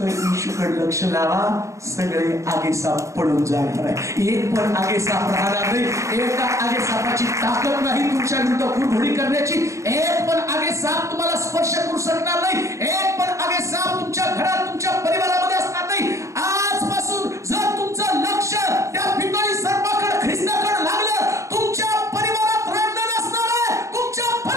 येशूकडे लक्ष लावा, सगळे आगे साप पडून जाणार आहे. एक पण आगे साप राहणार नाही. एका आगे सापाची ताकद नाही तुमच्या विरुद्ध कुरघोडी करण्याची. एक पण आगे साप तुम्हाला स्पर्श करू शकणार नाही. एक पण आगे साप तुमच्या घरात, तुमच्या परिवारामध्ये असणार नाही. आजपासून जर तुमचं लक्ष त्या पितळी सर्पाकडे, ख्रिस्ताकडे लागलं, तुमच्या परिवारात रडणं नसणार आहे. तुमच्या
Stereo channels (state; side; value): late; left; 0.15 ms